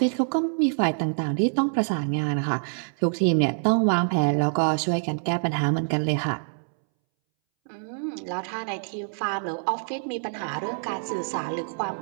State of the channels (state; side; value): silent; left; 61 dB below the other